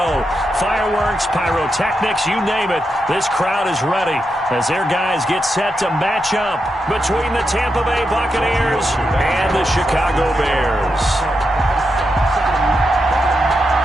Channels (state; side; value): normal; both; correlation 0.85